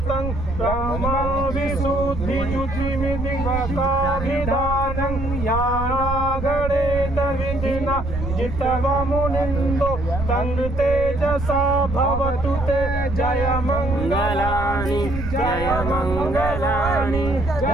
ब्रह्मविशुद्धियुतिमिदिवकाभिधानं यानागणेन विधिना जितवमुनिन्दो तं तेजसा भवतु ते जय मंगलानि जय मंगलानि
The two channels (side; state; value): right; noise; rumble, 6 dB below the sound